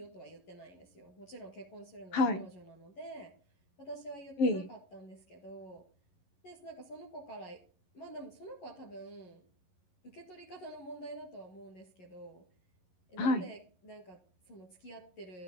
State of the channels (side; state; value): right; late; 11 ms